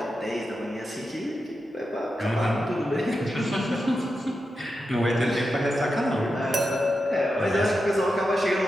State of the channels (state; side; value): normal; both; correlation 0.89